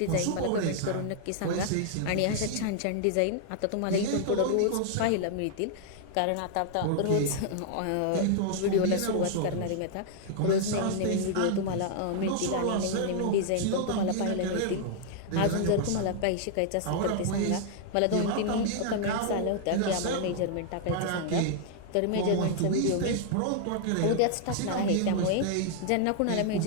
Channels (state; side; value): different; both; correlation -0.01